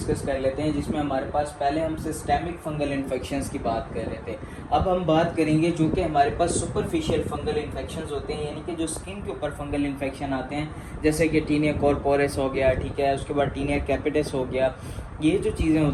कर लेते हैं, जिसमें हमारे पास पहले हम सिस्टेमिक फंगल इन्फेक्शंस की बात कर रहे थे। अब हम बात करेंगे जो कि हमारे पास सुपरफिशियल फंगल इन्फेक्शंस होते हैं, यानी कि जो स्किन के ऊपर फंगल इन्फेक्शन आते हैं, जैसे कि टीनिया कॉर्पोरस हो गया, ठीक है, उसके बाद टीनिया कैपिटस हो गया। ये जो चीज़ें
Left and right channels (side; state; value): both; identical; correlation 1.00